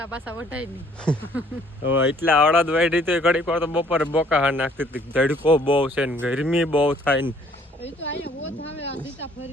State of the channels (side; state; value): both; normal; correlation 0.60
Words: પાછા વઢાય નહીં. એટલા અડદ વાઢી તો ઘડીક વાર તો બપોરે બોકા હા નાખતી હતી. ધડકો બહુ છે ને ગરમી બહુ થાય ને